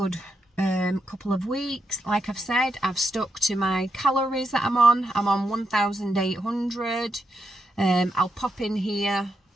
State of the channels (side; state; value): both; normal; correlation 0.84